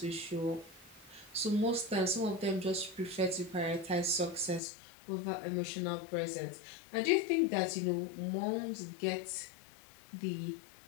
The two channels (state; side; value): drops out; right; at 4.6 s